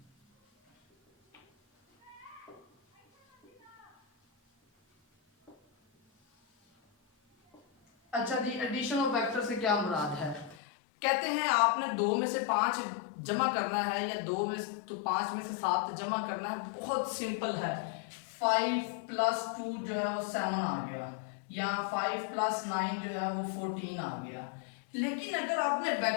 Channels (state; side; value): drops out; right; at 10.6 s